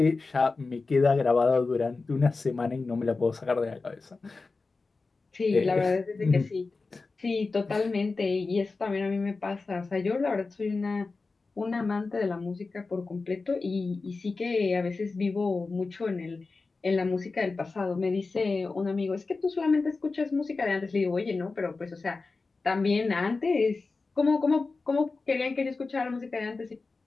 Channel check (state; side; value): quieter; right; 3.9 dB